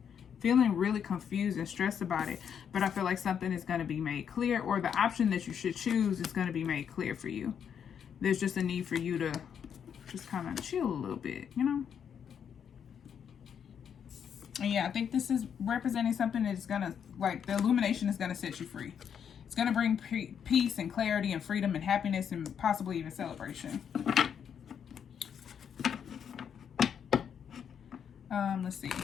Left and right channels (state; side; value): quieter; right; 7.9 dB